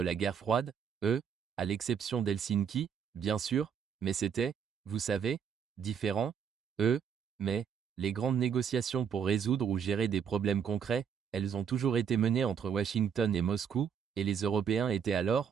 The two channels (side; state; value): left; quieter; 7.4 dB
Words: la guerre froide, à l'exception d'Helsinki, bien sûr, mais c'était, vous savez, différent, mais, les grandes négociations pour résoudre ou gérer des problèmes concrets, elles ont toujours été menées entre Washington et Moscou, et les Européens étaient alors,